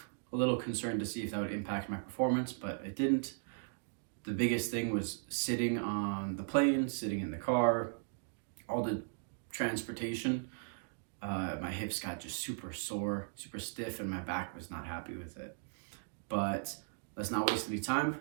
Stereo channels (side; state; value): left; silent; digital silence